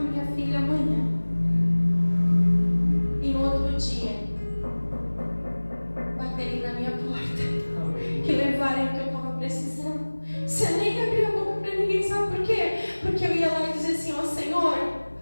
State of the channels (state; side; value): inverted; both; correlation -1.00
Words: filha amanhã? E no outro dia, baterem na minha porta, que levarem o que eu estava precisando. Você nem abriu a boca para ninguém, sabe por quê? Porque eu ia lá e dizia assim: ó, Senhor,